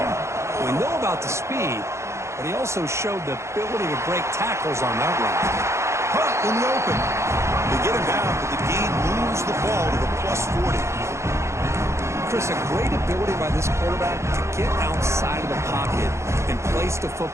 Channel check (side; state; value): left; late; 0.14 ms